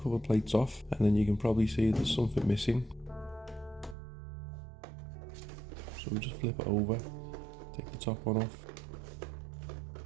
plates off, and then you can probably see there's something missing. So we'll just flip it over, take the top one off.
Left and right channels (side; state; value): left; drops out; at 4.0 s